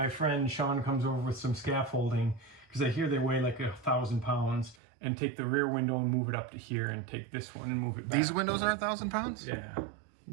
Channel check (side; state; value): left; drops out; at 4.8 s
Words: friend Sean comes over with some scaffolding, because I hear they weigh like 1,000 pounds, and take the rear window and move it up to here, and take this one and move it back. These windows are 1,000 pounds? Yeah,